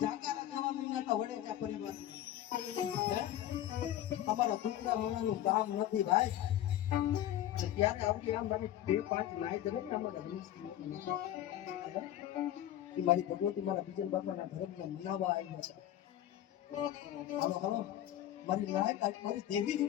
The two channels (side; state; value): right; quieter; 12.4 dB